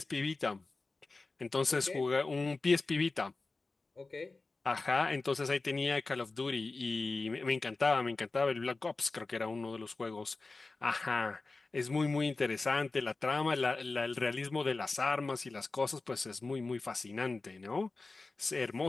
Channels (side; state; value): right; quieter; 3.6 dB